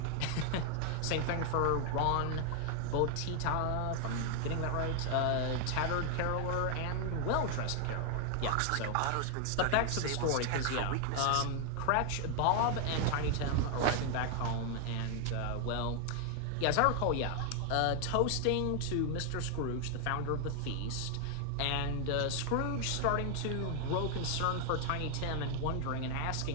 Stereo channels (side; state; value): both; different; correlation 0.00